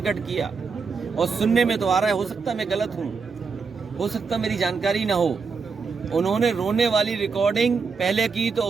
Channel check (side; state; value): left; quieter; 5.1 dB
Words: किया। और सुनने में तो आ रहा है, हो सकता है मैं गलत हूं, हो सकता मेरी जानकारी ना हो, उन्होंने रोने वाली रिकॉर्डिंग पहले की तो